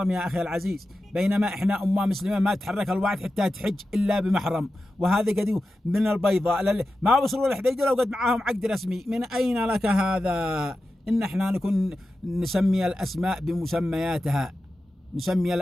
يا أخي العزيز؟ بينما إحنا أمة مسلمة ما تحرك الواحد حتى تحج إلا بمحرم. وهذا قد من البيضاء ما وصلوا للحديدة لو قد معاهم عقد رسمي. من أين لك هذا؟ إن إحنا نكون نسمي الأسماء بمسمياتها، نسمي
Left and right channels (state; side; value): normal; both; correlation 0.92